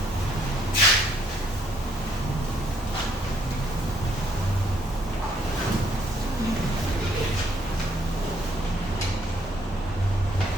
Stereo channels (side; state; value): both; normal; correlation 0.67